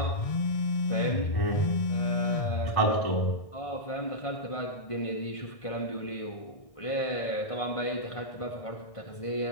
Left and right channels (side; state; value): right; late; 1.6 ms